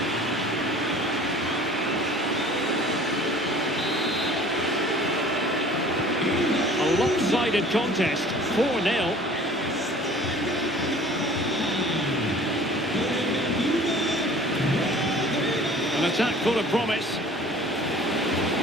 A lopsided contest, 4-0. An attack full of promise.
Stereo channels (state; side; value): normal; both; correlation 0.48